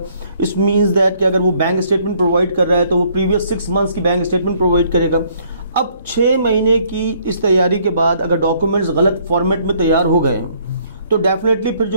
इस मीन्स दैट कि अगर वो बैंक स्टेटमेंट प्रोवाइड कर रहा है तो वो प्रीवियस 6 मंथ्स की बैंक स्टेटमेंट प्रोवाइड करेगा। अब 6 महीने की इस तैयारी के बाद अगर डॉक्यूमेंट्स गलत फॉर्मेट में तैयार हो गए तो डेफिनेटली फिर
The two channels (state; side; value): inverted; both; correlation -0.64